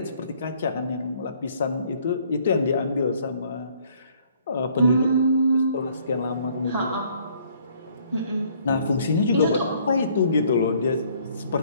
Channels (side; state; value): both; inverted; correlation -0.62